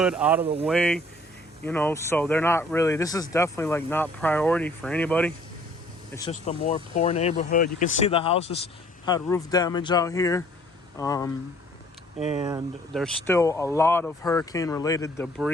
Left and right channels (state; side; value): normal; both; correlation 0.57